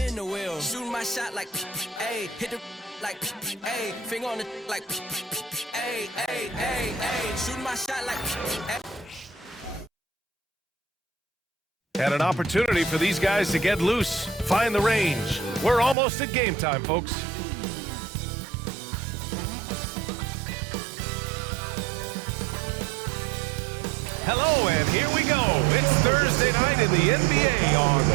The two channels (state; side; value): drops out; left; at 16.0 s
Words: in the wheel, shooting my shot like ayy, hit the like ayy, finger on the like ayy, ayy, ayy, ayy, shooting my shot like ayy. And an opportunity for these guys to get loose, find the range. We're almost at game time, folks. Hello, and here we go. It's Thursday night in the NBA on